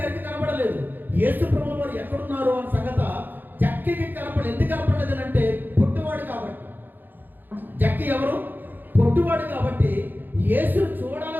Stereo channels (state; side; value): late; left; 0.090 ms